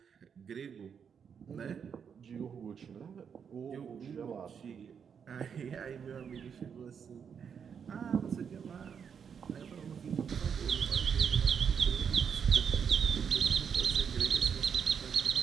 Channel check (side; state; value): left; quieter; 7.1 dB